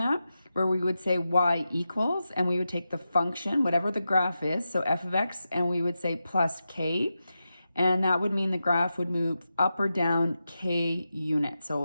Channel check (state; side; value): inverted; both; correlation -0.90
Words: where we would say y equals, and we would take the function, whatever the graph is, so f of x, and we would say plus k, and that would mean the graph would move up or down k units,